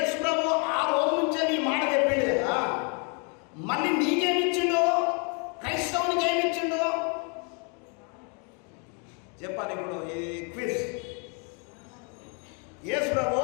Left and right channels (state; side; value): quieter; right; 37.0 dB